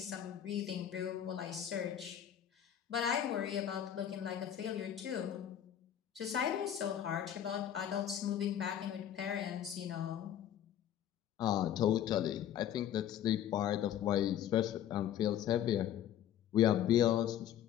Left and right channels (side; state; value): right; quieter; 10.5 dB